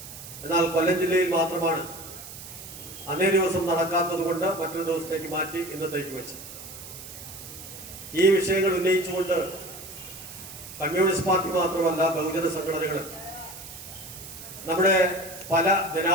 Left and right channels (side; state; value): right; noise; hiss, 13 dB below the sound